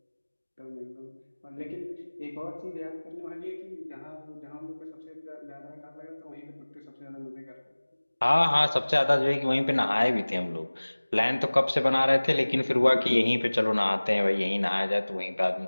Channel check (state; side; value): inverted; both; correlation -1.00